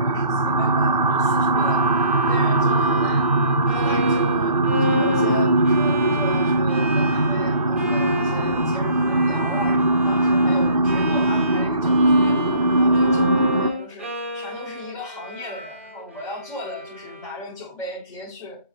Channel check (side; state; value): both; inverted; correlation -0.56